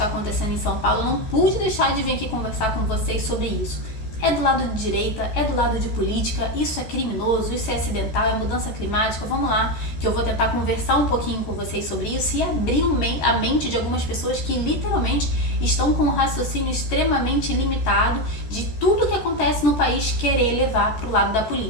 acontecendo em São Paulo, eu não pude deixar de vir aqui conversar com vocês sobre isso. É do lado de direita, é do lado de política, isso é criminoso, isso é acidental, é mudança climática, vamos lá, que eu vou tentar conversar um pouquinho com vocês sobre isso e abrir a mente de algumas pessoas que literalmente estão com um raciocínio extremamente limitado de tudo que acontece no país querer levar para o lado da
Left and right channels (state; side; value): late; right; 14 ms